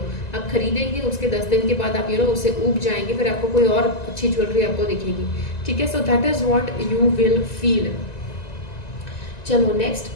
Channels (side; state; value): right; late; 1.9 ms